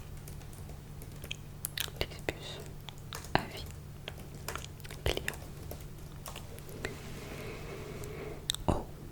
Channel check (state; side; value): identical; both; correlation 1.00